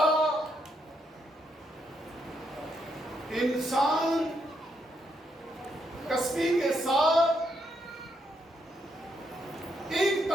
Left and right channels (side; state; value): both; normal; correlation 0.78